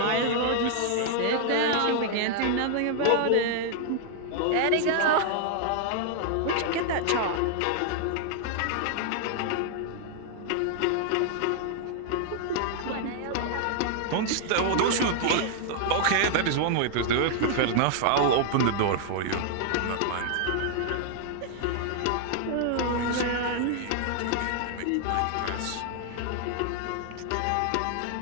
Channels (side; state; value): both; different; correlation 0.00